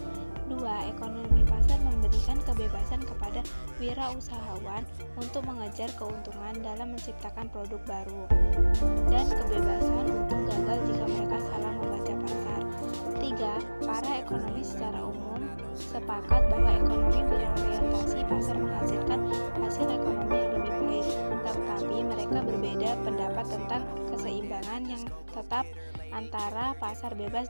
2. Ekonomi pasar memberikan kebebasan kepada wirausahawan untuk mengejar keuntungan dalam menciptakan produk baru, dan kebebasan untuk gagal jika mereka salah membaca pasar. 3. Para ekonomis secara umum sepakat bahwa ekonomi berorientasi pasar menghasilkan hasil ekonomi yang lebih baik, tetapi mereka berbeda pendapat tentang keseimbangan yang tetap antara pasar bebas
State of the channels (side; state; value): both; inverted; correlation -1.00